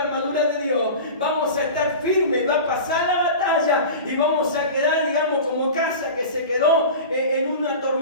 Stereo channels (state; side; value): inverted; both; correlation -0.33